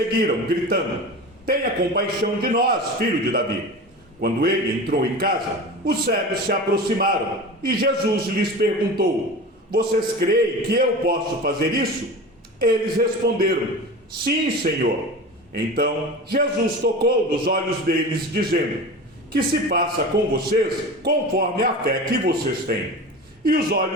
gritando: "Tenha compaixão de nós, filho de Davi." Quando ele entrou em casa, os cegos se aproximaram e Jesus lhes perguntou: "Vocês creem que eu posso fazer isso?" Eles responderam: "Sim, Senhor." Então Jesus tocou nos olhos deles, dizendo: "Que se faça com vocês conforme a fé que vocês têm." E os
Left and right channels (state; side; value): normal; both; correlation 0.31